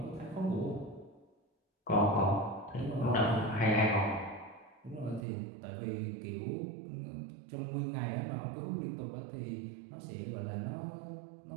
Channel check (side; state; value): left; drops out; at 5.2 s